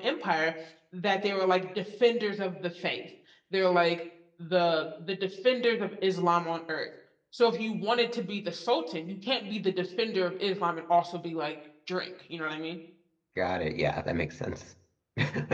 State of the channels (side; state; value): both; identical; correlation 1.00